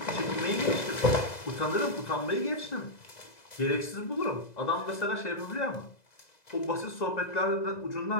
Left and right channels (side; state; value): right; late; 2.0 ms